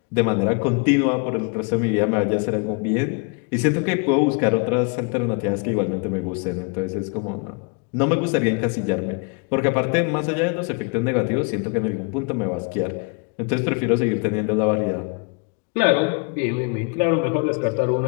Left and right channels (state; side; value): quieter; right; 34.2 dB